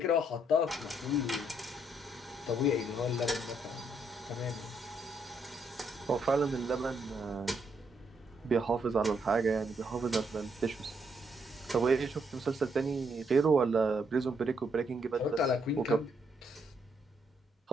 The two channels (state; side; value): normal; both; correlation 0.74